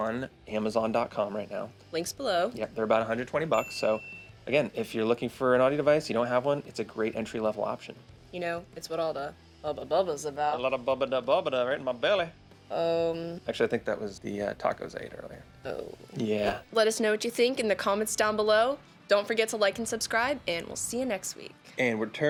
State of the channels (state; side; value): identical; both; correlation 1.00